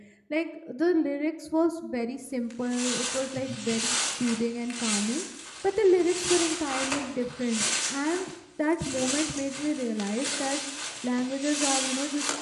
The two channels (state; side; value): identical; both; correlation 1.00